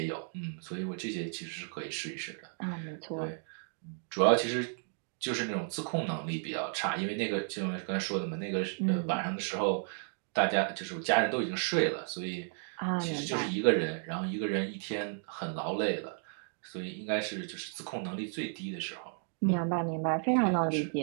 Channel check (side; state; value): left; silent; 55 dB below the other